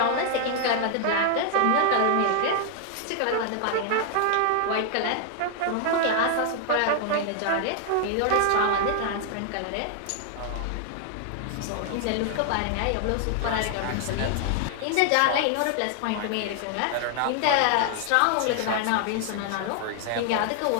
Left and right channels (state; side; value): different; both; correlation 0.00